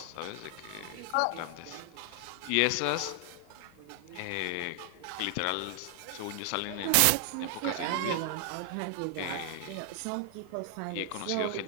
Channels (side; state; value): both; different; correlation 0.00